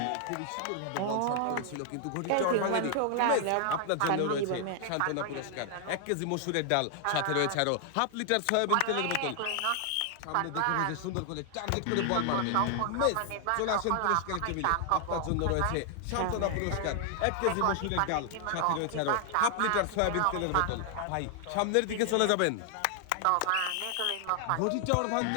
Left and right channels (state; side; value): different; both; correlation 0.00